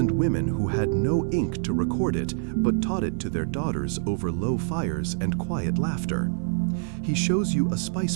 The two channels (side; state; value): left; silent; 61 dB below the other